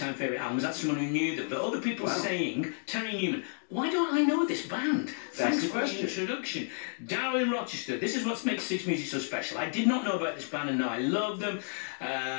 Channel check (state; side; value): silent; right; 57 dB below the other